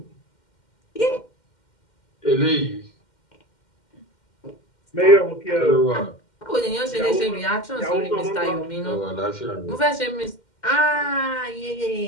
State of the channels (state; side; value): late; right; 2.1 ms